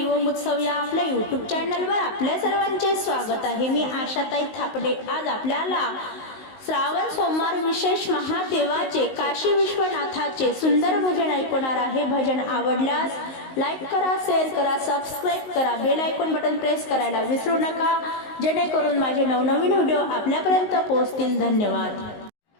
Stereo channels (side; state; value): right; late; 19 ms